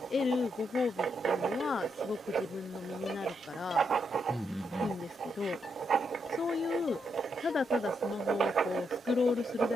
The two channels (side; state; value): both; normal; correlation 0.80